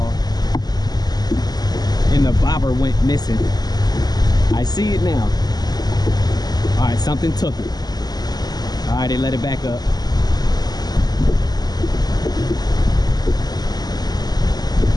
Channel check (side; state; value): right; late; 0.20 ms